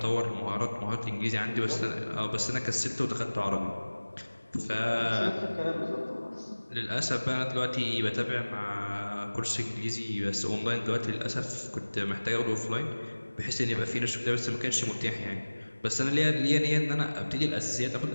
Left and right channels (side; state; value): both; inverted; correlation -1.00